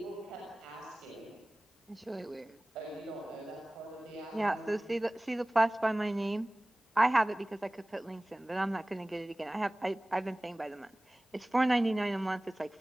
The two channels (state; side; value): normal; both; correlation 0.98